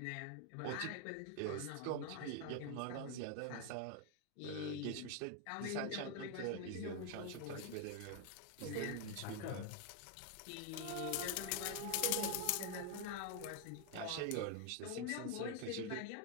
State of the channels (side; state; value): both; different; correlation 0.01